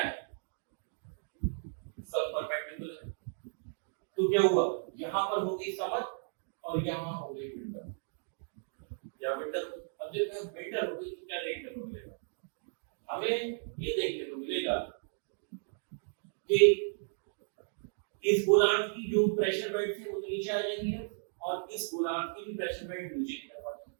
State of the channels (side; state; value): left; silent; digital silence